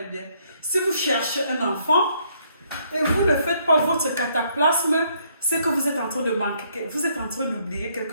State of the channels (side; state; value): both; inverted; correlation -0.68